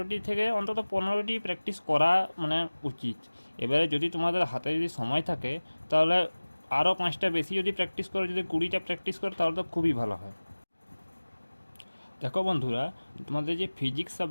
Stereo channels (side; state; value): both; inverted; correlation -1.00